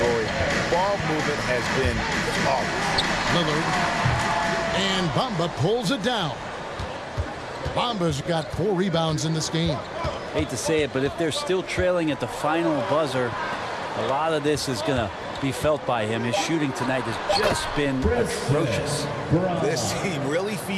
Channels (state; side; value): identical; both; correlation 1.00